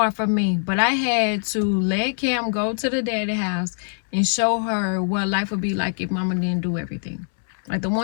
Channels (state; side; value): silent; right; digital silence